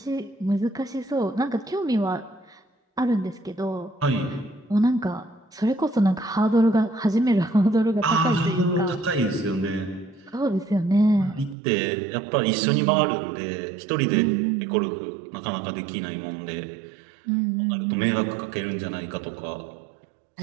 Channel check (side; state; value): left; drops out; at 11.6 s